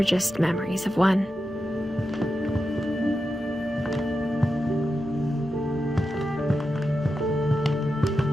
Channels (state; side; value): normal; both; correlation 0.89